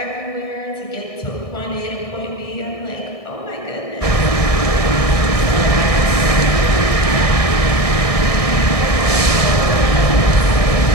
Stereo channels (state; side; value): late; right; 1.6 ms